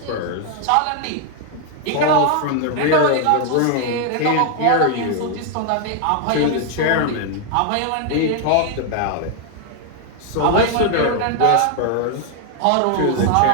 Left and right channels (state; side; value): different; both; correlation 0.00